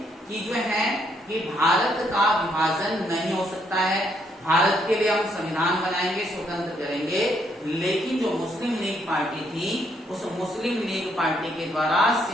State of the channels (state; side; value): normal; both; correlation 0.72